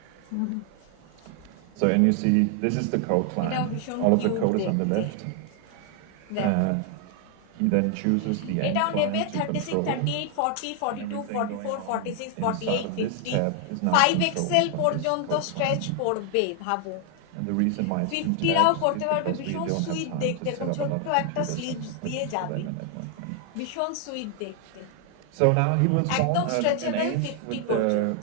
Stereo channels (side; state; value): both; different; correlation 0.00